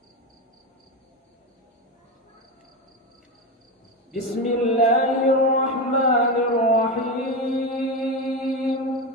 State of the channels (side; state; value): both; normal; correlation 0.17